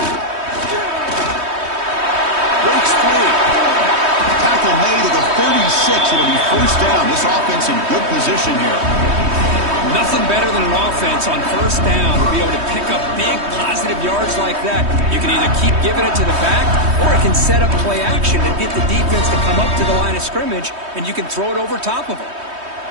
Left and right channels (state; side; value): late; left; 3.2 ms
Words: Breaks free. Tackle made at the 36. It'll be first down. This offense in good position here. Nothing better than an offense on first down to be able to pick up big positive yards like that. You can either keep giving it to the back, or it can set up play action and get the defense to come up to the line of scrimmage, and you can throw it over top of them.